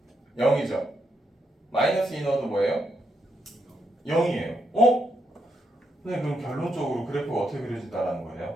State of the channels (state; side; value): normal; both; correlation 0.79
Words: 0이죠. 마이너스 2 넣어도 뭐예요? 0이에요. 어? 선생님 그럼 결론적으로 그래프가 어떻게 그려진다는 거예요?